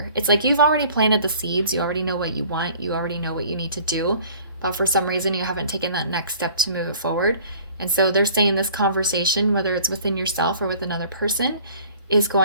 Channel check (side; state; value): both; inverted; correlation -0.51